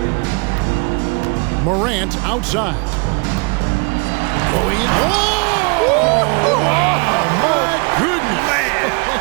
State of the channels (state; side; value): quieter; left; 32.6 dB